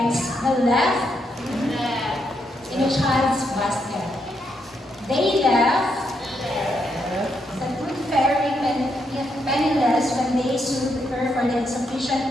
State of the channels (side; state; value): both; normal; correlation 0.79